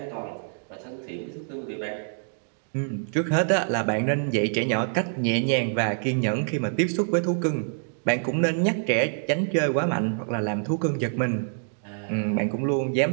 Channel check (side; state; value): left; silent; digital silence